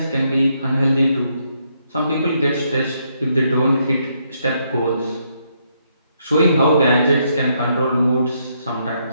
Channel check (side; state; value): both; inverted; correlation -0.76